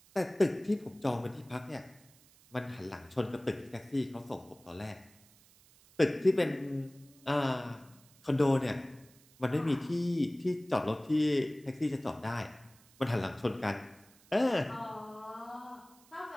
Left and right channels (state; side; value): noise; right; hiss, 27 dB below the sound